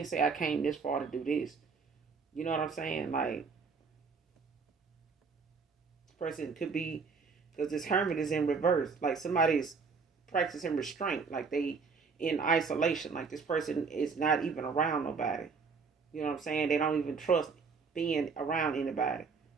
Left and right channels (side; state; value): left; quieter; 5.1 dB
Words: say I came this far to do this. You know what I'm saying? Like, this person could be, because this hermit is in reverse. Like, somebody's practicing restraint. Like, they in isolation. Like, this person is not even around nobody. You know what I'm saying? They don't even trust being around anybody.